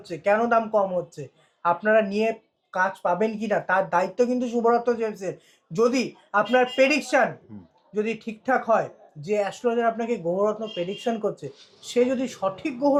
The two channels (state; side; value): identical; both; correlation 1.00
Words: কেন দাম কম হচ্ছে, আপনারা নিয়ে কাজ পাবেন কিনা তার দায়িত্ব কিন্তু শুভরত্ন জেমসের। যদি আপনার প্রেডিকশন যদি ঠিকঠাক হয়, যে অ্যাস্ট্রোলজার আপনাকে গ্রহরত্ন প্রেডিকশন করছে সে যদি সঠিক